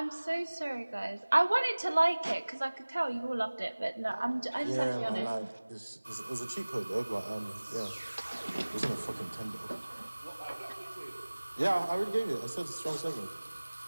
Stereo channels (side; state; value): both; inverted; correlation -1.00